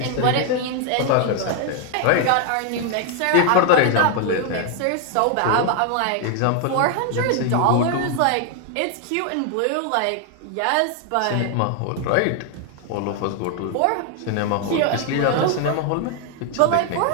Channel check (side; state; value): both; different; correlation 0.00